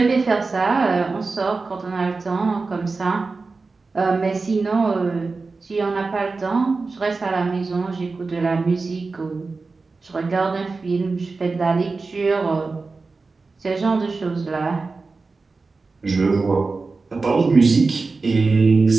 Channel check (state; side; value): quieter; left; 4.0 dB